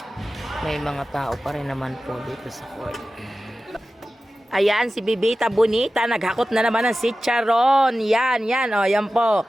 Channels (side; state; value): both; normal; correlation 0.95